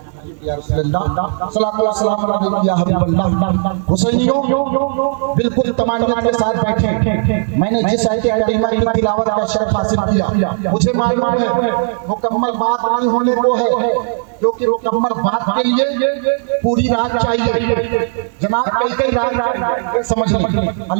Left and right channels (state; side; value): silent; left; 59 dB below the other